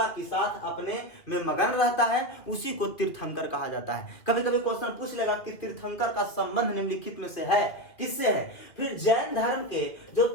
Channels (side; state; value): right; late; 2.7 ms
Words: के साथ अपने में मगन रहता है, उसी को तीर्थंकर कहा जाता है। कभी कभी क्वेश्चन पूछ लेगा कि तीर्थंकर का संबंध निम्नलिखित में से है, किससे है? फिर जैन धर्म के जो